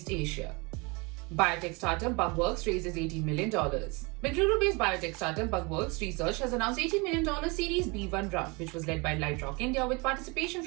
Asia. Biotech startup Bugworks raises $18 million. Bengaluru-based biotech startup Bugworks Research has announced $18 million Series B1 round, which was led by Lightrock India with participation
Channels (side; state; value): left; quieter; 28.3 dB